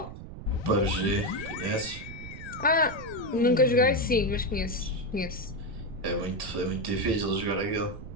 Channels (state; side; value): noise; right; rumble, 12 dB below the sound